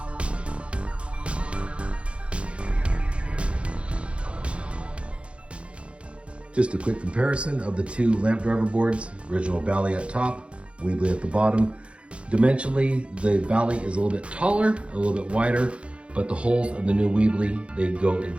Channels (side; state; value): left; late; 0.060 ms